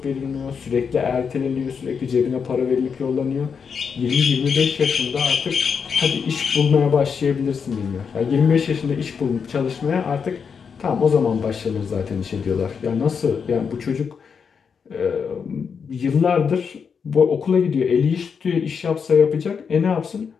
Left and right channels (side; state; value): right; quieter; 6.3 dB